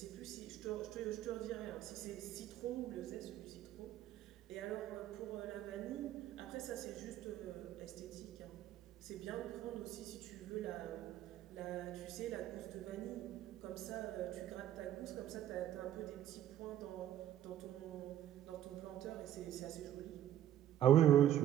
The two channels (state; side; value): quieter; left; 11.8 dB